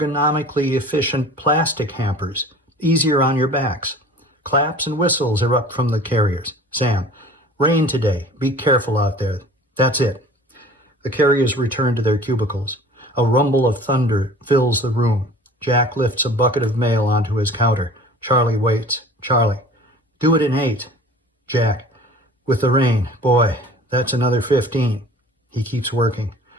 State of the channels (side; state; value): both; normal; correlation 0.45